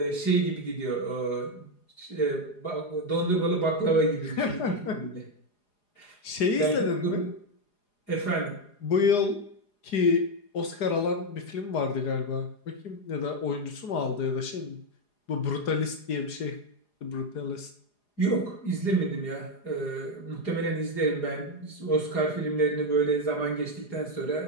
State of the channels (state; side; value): late; right; 4.8 ms